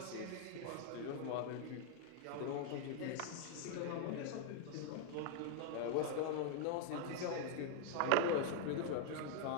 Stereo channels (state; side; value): different; both; correlation 0.00